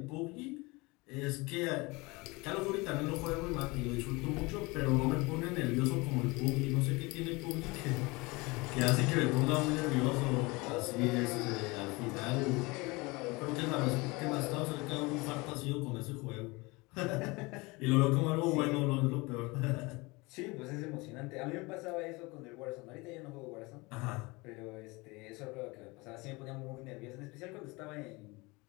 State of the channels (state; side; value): quieter; right; 24.8 dB